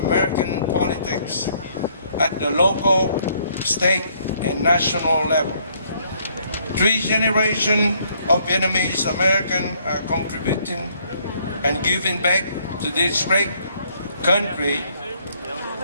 American politics at the local, state, and national level. 3 generations of Vietnamese Americans are contributing and giving back to this great country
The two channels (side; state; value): both; inverted; correlation -0.66